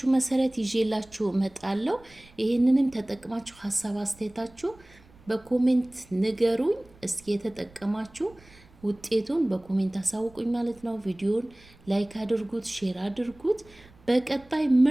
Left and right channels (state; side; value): noise; right; rumble, 26 dB below the sound